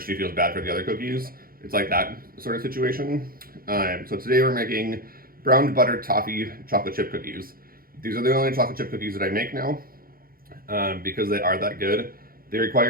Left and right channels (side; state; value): left; late; 0.42 ms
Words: she feels bad for the other cookies. It's like that sort of situation. So today we're making brown butter toffee chocolate chip cookies. These are the only chocolate chip cookies that I make now because they are that good. They